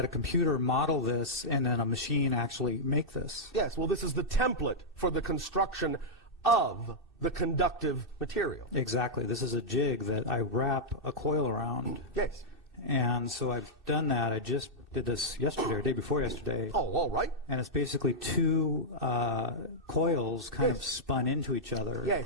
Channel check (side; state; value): both; normal; correlation -0.07